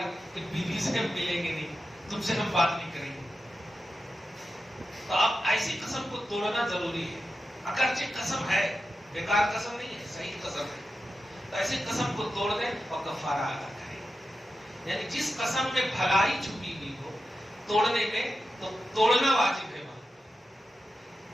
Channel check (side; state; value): both; normal; correlation 0.91